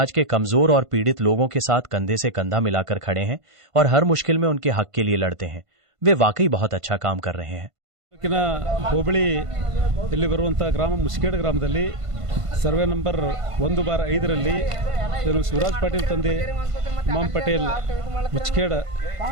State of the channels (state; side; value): late; left; 1.5 ms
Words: के कमजोर और पीड़ित लोगों के साथ कंधे से कंधा मिलाकर खड़े हैं और हर मुश्किल में उनके हक के लिए लड़ते हैं। वे वाकई बहुत अच्छा काम कर रहे हैं। ಹೋಬಳಿ ಇಲ್ಲಿ ಬರುವಂತಹ ಗ್ರಾಮ ಮುಸ್ಕೇಡ್ ಗ್ರಾಮದಲ್ಲಿ ಸರ್ವೆ ನಂಬರ್ 1/5ರಲ್ಲಿ ಶಿವರಾಜ್ ಪಾಟೀಲ್ ತಂದೆ ಇಮಾಮ್ ಪಟೇಲ್ ಮುಚ್ಕೇಡ್